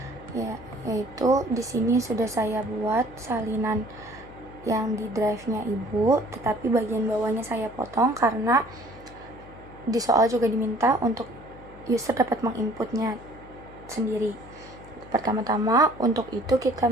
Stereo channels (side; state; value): left; noise; hum, 19 dB below the sound